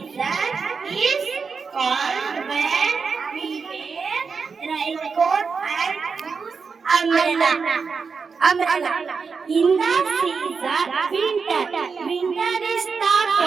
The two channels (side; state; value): left; quieter; 5.2 dB